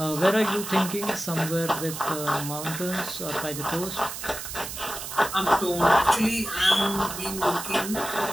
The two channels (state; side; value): noise; right; hiss, 8 dB below the sound